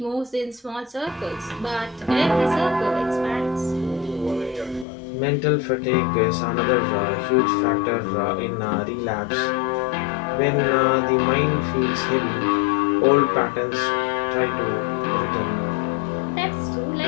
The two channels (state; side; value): drops out; right; at 4.9 s